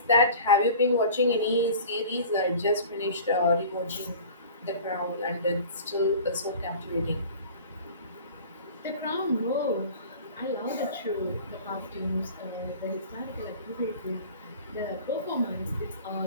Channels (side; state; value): both; inverted; correlation -0.42